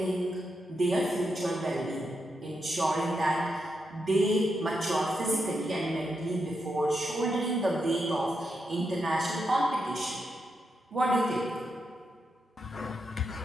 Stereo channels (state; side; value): normal; both; correlation 0.84